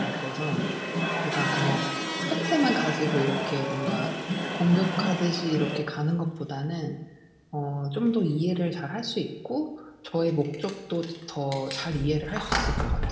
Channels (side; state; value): both; identical; correlation 1.00